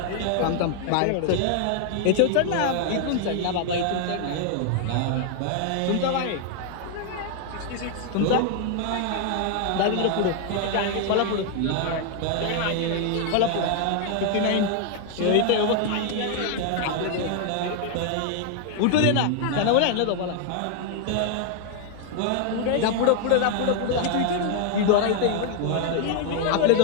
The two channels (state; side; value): different; both; correlation 0.00